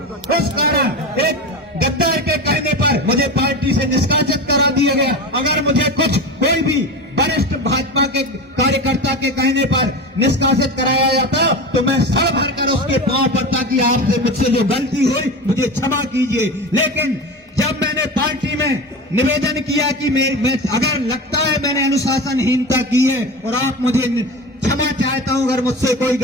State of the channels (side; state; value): both; normal; correlation 0.26